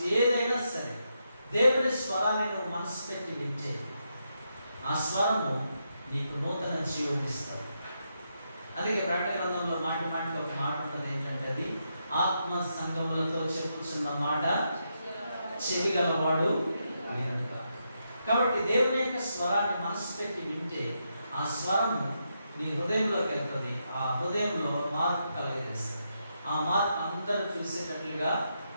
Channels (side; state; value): both; inverted; correlation -0.82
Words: ఏదైనా సరే దేవుని స్వరాన్ని నువ్వు మనసు పెట్టి వింటే ఆ స్వరము నీకు నూతన జీవం ఇస్తుంది. అందుకే ప్రకటన గ్రంథంలో మాటి మాటికి ఒక మాట ఉంటుంది. ఏంటంటే అది ఆత్మ సంగములతో చెప్పుచున్న మాట చెవి గలవాడు వినుట. కాబట్టి దేవుని యొక్క స్వరాన్ని మనసు పెట్టి వింటే ఆ స్వరము నీ హృదయంలోకి వెళ్తుంది. ఆ హృదయంలో మార్పు కలిగజేస్తుంది. ఆ మార్పు అందరూ చూసేటట్లుగా